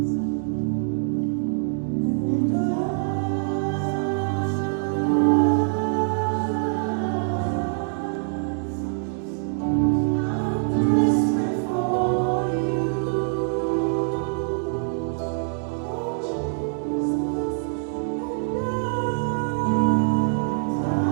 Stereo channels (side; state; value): left; silent; digital silence